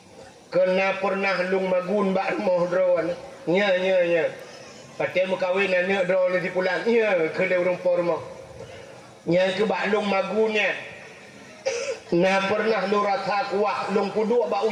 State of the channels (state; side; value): identical; both; correlation 1.00